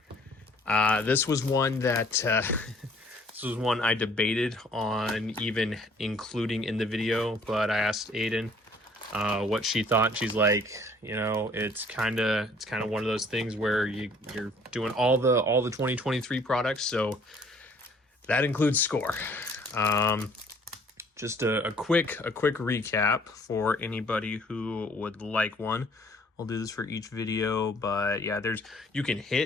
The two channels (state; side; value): normal; both; correlation 0.57